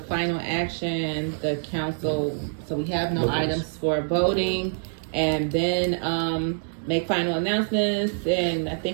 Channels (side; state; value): left; silent; digital silence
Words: action, the council, so we have no items for voting, and then make final announcements, and I